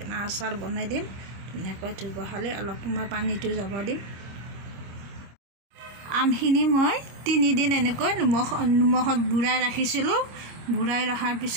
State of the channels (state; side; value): late; left; 26 ms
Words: আচাৰ বনাই দিম ধুনীয়াকৈ ধুই পখালি অলপ সময় পানীটো যাব দিম। আমখিনি মই 3 দিন এনেকৈ নিমখত বুৰাই ৰাখিছিলোঁ। বুৰাই ৰখাৰ